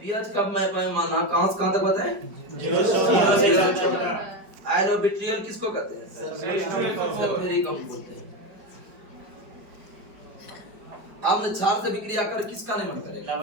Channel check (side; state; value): left; late; 4.9 ms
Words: पीएच कब मैं माना कहां से कहां तक बताएं? 0 से 14। आयनोबिट्रियल किसको कहते हैं? सल्फ्यूरिक अम्ल बोलते हैं। अम्ल क्षार से विक्रिया कर किसका निर्माण करेगा?